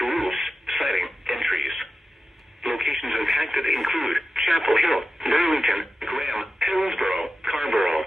roofs, siding, and trees. Locations impacted include Chapel Hill, Burlington, Graham, Hillsborough, Carrboro,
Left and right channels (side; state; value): both; normal; correlation 0.92